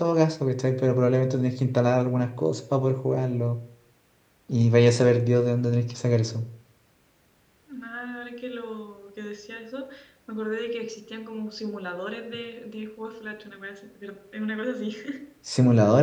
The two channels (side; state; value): both; identical; correlation 1.00